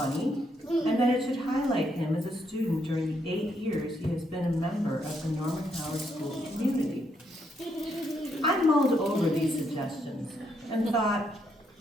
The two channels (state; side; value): normal; both; correlation 0.76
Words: and that it should highlight him as a student during the 8 years he has been a member of the Norman Howard School community. I mulled over these suggestions and thought,